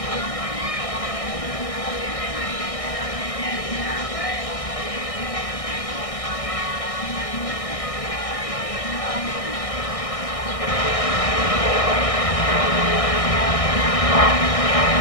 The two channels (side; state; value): right; late; 1.6 ms